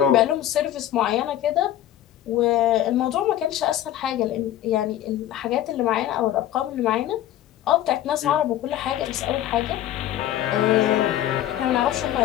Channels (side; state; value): right; quieter; 12.4 dB